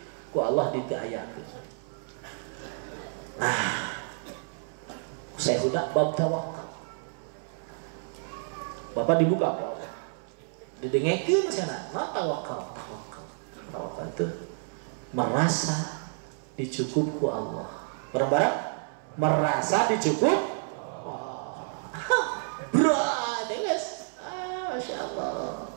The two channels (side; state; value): left; silent; 58 dB below the other